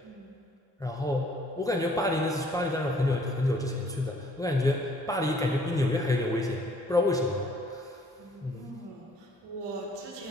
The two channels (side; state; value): both; normal; correlation 0.60